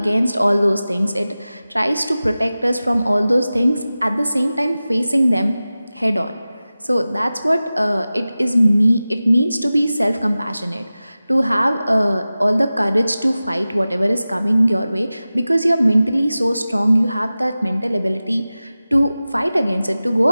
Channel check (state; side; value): inverted; both; correlation -0.96